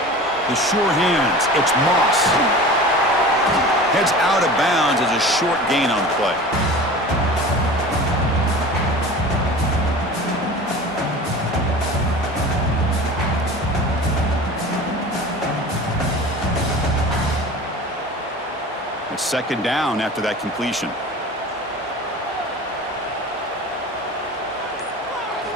The sure hands. It's Moss. Heads out of bounds as a short gain on the play. It's second down after that completion.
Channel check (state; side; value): normal; both; correlation 0.37